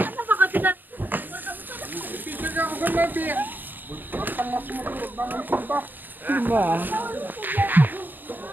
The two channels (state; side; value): late; left; 0.090 ms